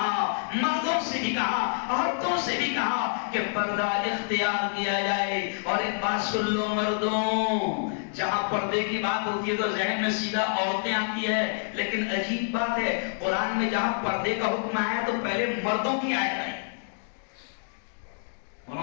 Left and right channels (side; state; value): right; silent; digital silence